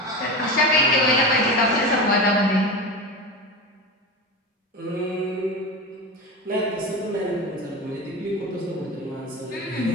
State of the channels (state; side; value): normal; both; correlation 0.25